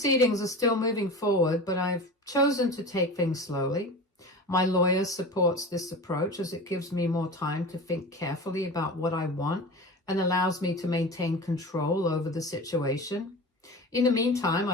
are still moving forward, but I've chosen to take things slowly. My lawyer supports this approach as it gives me more time to think carefully about what I want and allows me to maintain control over the situation. In the meantime,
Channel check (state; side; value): normal; both; correlation 0.32